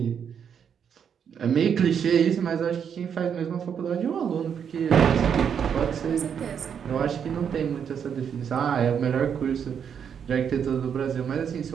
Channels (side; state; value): left; quieter; 7.7 dB